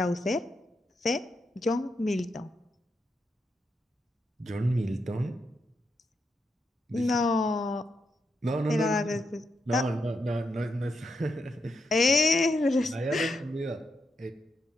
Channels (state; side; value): normal; both; correlation 0.83